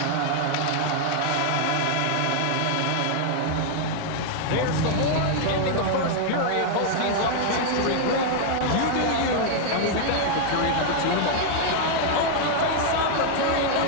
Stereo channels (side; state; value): both; different; correlation 0.00